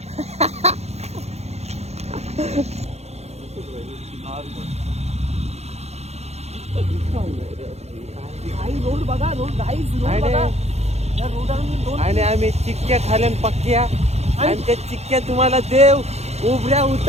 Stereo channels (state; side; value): late; left; 0.31 ms